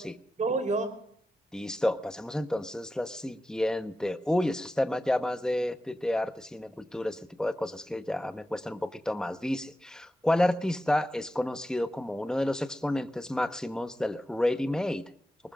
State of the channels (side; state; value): both; normal; correlation 0.91